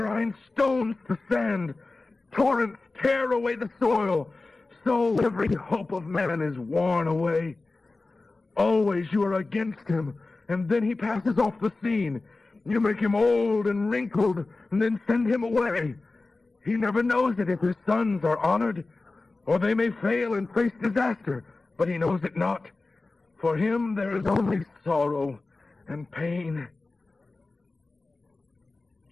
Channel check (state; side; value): quieter; right; 3.4 dB